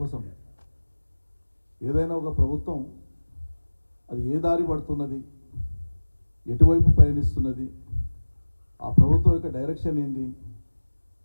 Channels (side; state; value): both; inverted; correlation -1.00